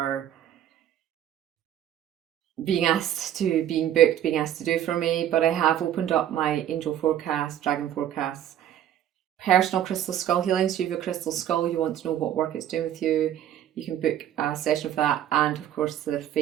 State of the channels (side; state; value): left; quieter; 11.1 dB